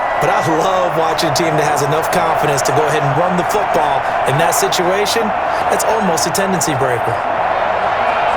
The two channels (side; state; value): both; identical; correlation 1.00